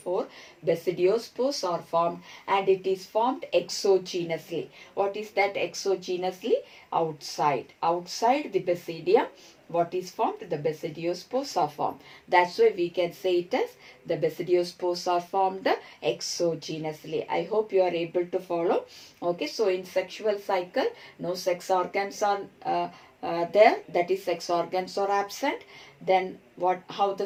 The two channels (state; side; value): identical; both; correlation 1.00